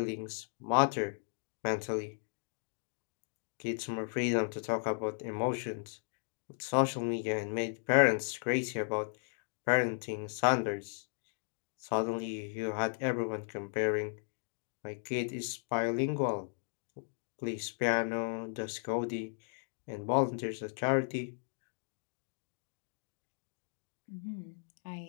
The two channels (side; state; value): right; silent; digital silence